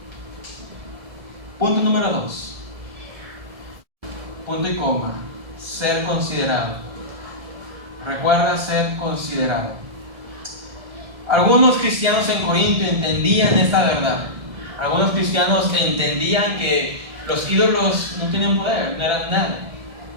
Punto número 2. Punto y coma. Ser considerado. Recuerda ser considerado. Algunos cristianos en Corinto entendían esta verdad. Algunos cristianos entendían que los ídolos no tienen poder, no eran nada,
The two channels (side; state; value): left; late; 1.7 ms